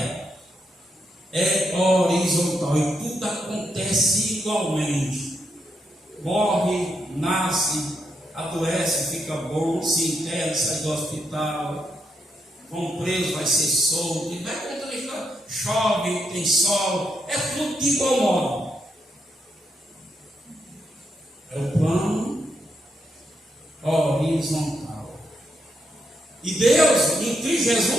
é horizontal, e tudo acontece igualmente. Morre, nasce, adoece, fica bom, se interna, sai do hospital, vão preso, vai ser solto, e vai contando a história. Chove, tem sol, é tudo de igual modo. É o plano horizontal. E Deus, em Cristo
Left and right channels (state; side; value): normal; both; correlation 0.81